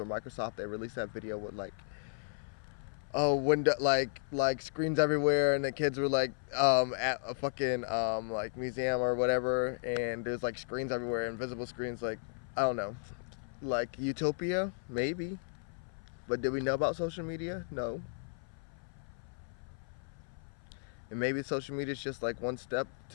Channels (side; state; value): right; silent; 55 dB below the other